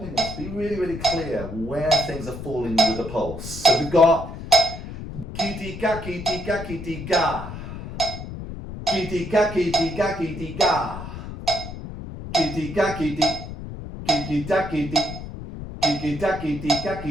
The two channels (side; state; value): left; noise; rumble, 10 dB below the sound